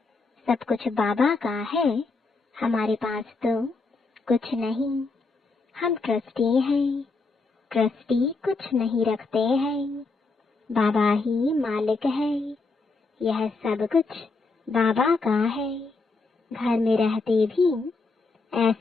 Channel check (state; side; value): quieter; right; 3.8 dB